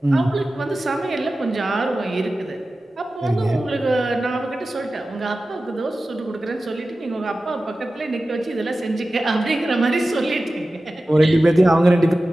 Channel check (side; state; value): both; normal; correlation 0.95